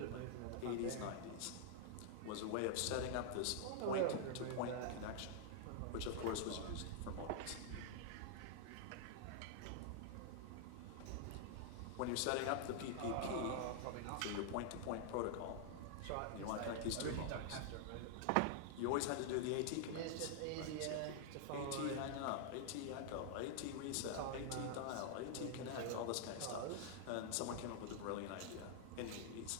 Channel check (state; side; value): different; both; correlation 0.00